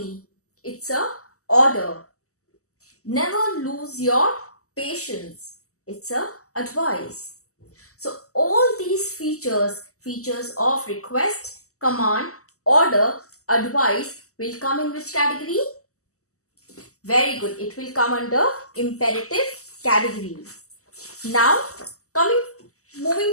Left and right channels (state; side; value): late; right; 0.65 ms